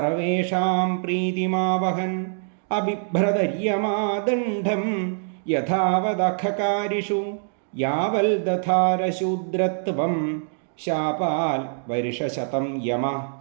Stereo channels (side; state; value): left; silent; digital silence